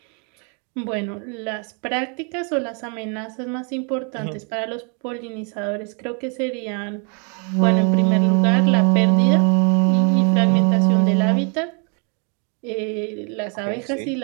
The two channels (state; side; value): quieter; left; 37.4 dB